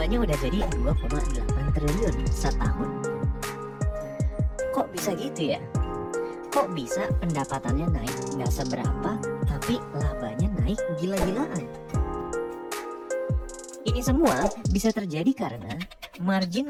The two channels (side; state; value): both; identical; correlation 1.00